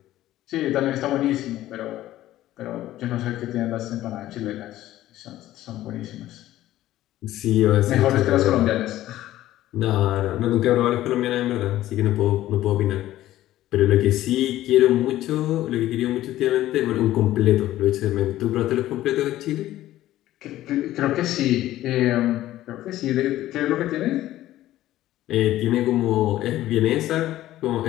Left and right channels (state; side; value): quieter; right; 14.4 dB